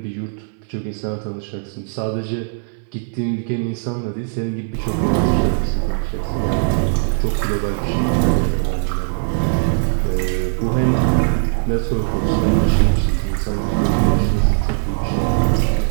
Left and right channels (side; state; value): left; silent; 63 dB below the other